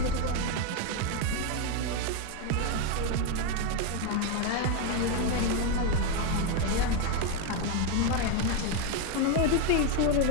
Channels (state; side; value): different; both; correlation 0.02